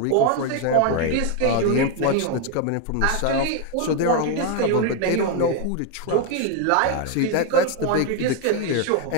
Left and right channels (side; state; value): both; different; correlation 0.01